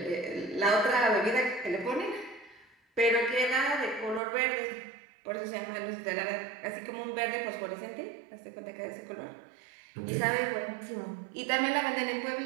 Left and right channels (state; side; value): drops out; left; at 4.2 s